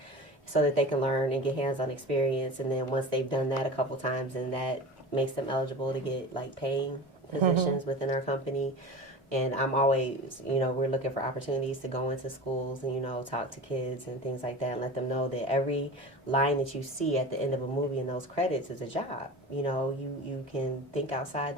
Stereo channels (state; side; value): normal; both; correlation 0.33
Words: so that they can learn and get hands-on experience. And then once they've done that a couple times, and that makes them eligible to get, like, paying positions within our company. And I'm always, you know, we're looking for opportunities to go into schools and, you know, talk to kids and things like that and let them know that every line that you see at the end of a movie in those credits is a job. You know, you can think outside